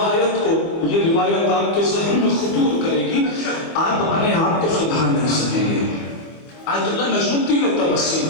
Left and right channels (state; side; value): late; right; 25 ms